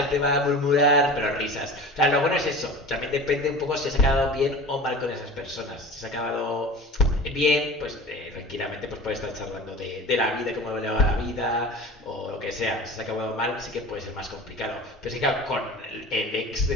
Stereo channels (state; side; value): normal; both; correlation 0.37